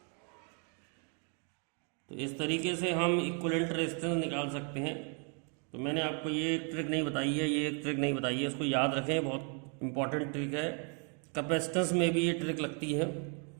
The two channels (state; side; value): quieter; left; 38.8 dB